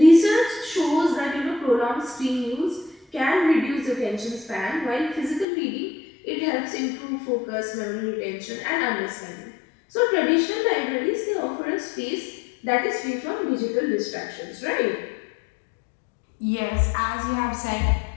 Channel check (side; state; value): right; drops out; at 5.5 s